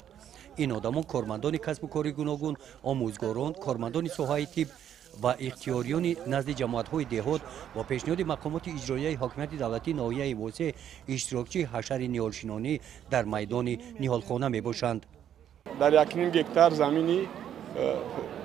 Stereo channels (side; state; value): left; quieter; 9.9 dB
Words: ин одамон кормандони касбу кори гуногун, омӯзгорон, кормандони соҳаи тиб ва ихтиёриёни назди ҷамоатҳои деҳот бо пешниҳоди мақомоти иҷроияи ҳокимияти давлатии ноҳияи восеъ иштирокчии ҳашари ниҳолшинонӣ дар майдони ниҳолхона мебошанд. дар 1.5 гектар замини